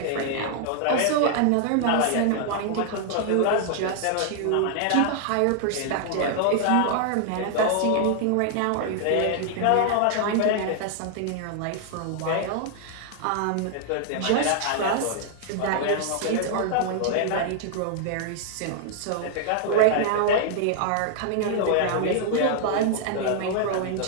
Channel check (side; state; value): both; different; correlation -0.01